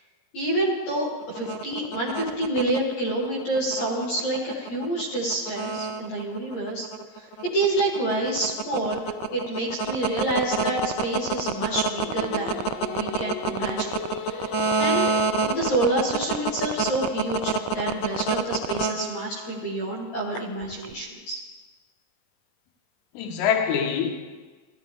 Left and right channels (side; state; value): right; late; 17 ms